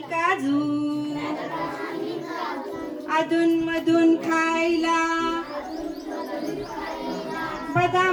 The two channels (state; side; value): identical; both; correlation 1.00